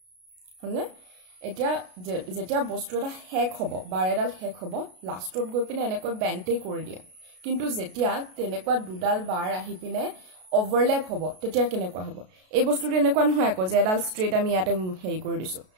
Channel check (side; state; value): left; late; 33 ms